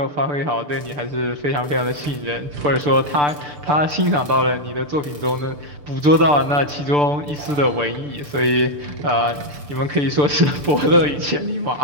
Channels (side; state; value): left; late; 6.8 ms